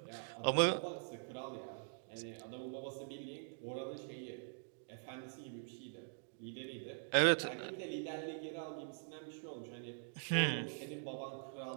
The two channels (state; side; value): silent; left; digital silence